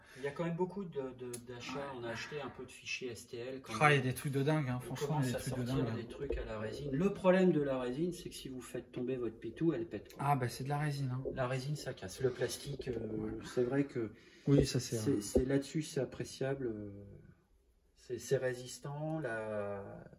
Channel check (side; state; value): both; identical; correlation 1.00